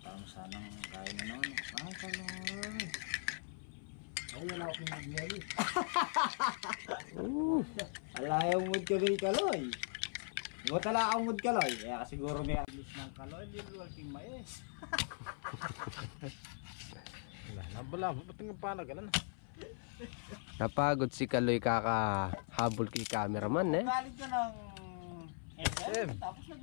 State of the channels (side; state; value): right; silent; 51 dB below the other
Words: Tama sanang kain na naman. Ang kaloy. Ay, wala akong mag-yari. Alayaw mood ka rin kaloy. Huwag tala akong mood kaloy. Kaya siguro may aglis ng kaloy. Hindi mo aking mais. Wala, ba't nga panagalan? Napagod si Kaloy kakahabol kay cameraman eh. Galit ka ng SM. Tapos